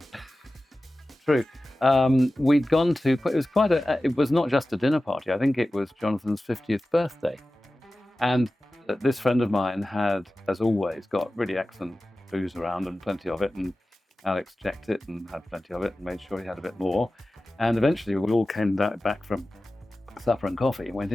True. We'd gone to, it was not just a dinner party. I think it was Jonathan's 50th birthday. And this friend of mine had, as always, got really excellent booze around and plenty of it. And Alex checked it and had plenty of it and made sure he had a bit more. And eventually we all came back from supper and coffee and went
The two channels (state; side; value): normal; both; correlation 0.95